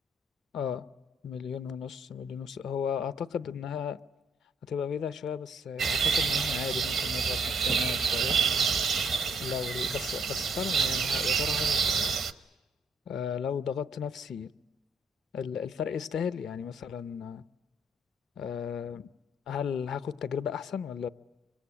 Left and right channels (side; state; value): both; normal; correlation 0.67